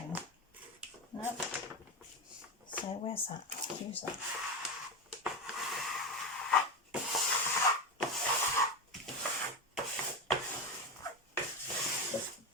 Nope. So where's that? Let's use that.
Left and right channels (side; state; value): both; normal; correlation 0.17